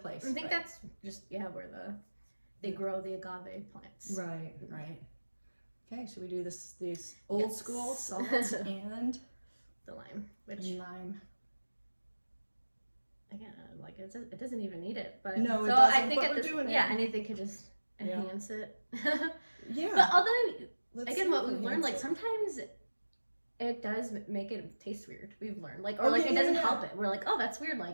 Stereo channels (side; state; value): both; inverted; correlation -1.00